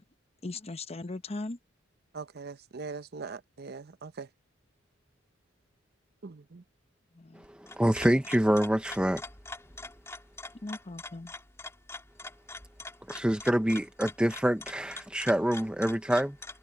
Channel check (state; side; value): normal; both; correlation 0.93